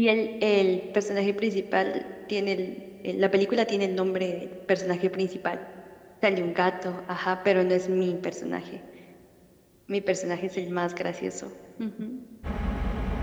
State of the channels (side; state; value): both; identical; correlation 1.00